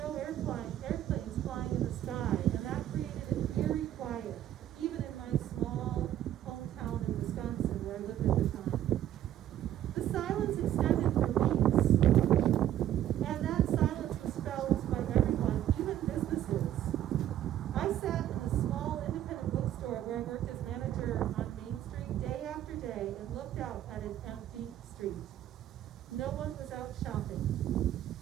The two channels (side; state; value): left; quieter; 11.9 dB